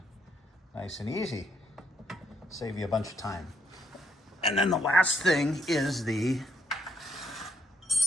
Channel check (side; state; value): both; normal; correlation 0.73